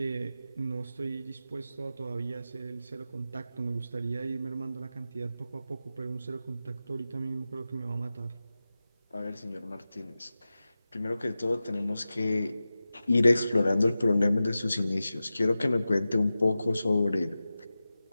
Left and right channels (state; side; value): inverted; both; correlation -0.94